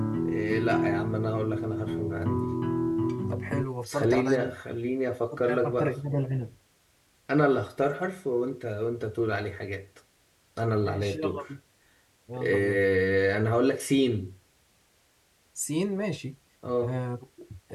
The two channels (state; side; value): identical; both; correlation 1.00